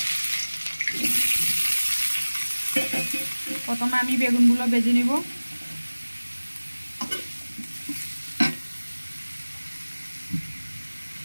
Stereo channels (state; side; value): inverted; both; correlation -1.00